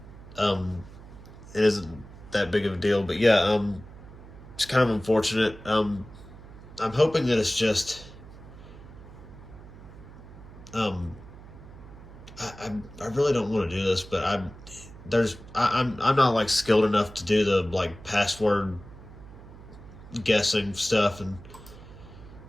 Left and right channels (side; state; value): right; noise; hum, 17 dB below the sound